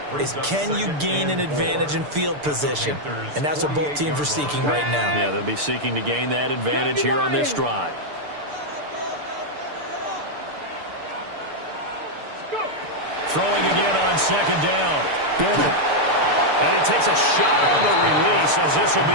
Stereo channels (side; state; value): left; late; 6.8 ms